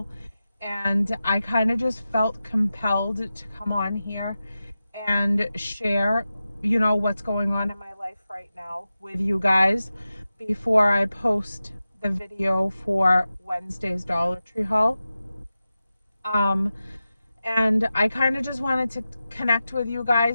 and I kind of just felt compelled to come on here and share, what's going on in my life right now with you guys before I post the video for Wednesday's Dollar Tree haul. And I kind of just wanted to connect with you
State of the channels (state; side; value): inverted; both; correlation -0.93